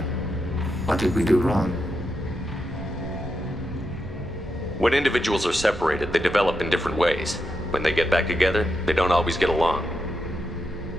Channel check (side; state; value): both; normal; correlation 0.84